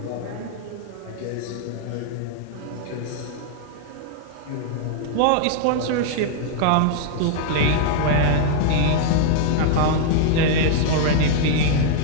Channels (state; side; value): different; both; correlation -0.01